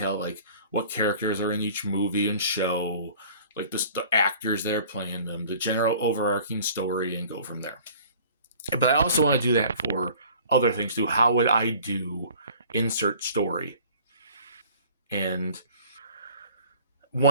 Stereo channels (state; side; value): inverted; both; correlation -0.49